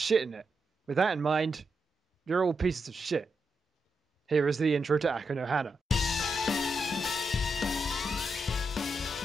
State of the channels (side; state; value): both; normal; correlation 0.85